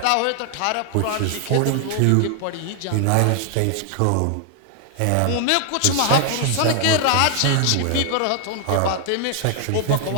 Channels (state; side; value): different; both; correlation 0.00